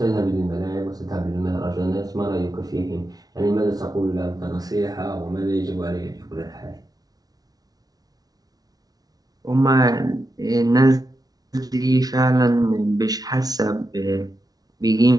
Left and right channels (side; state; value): left; late; 0.18 ms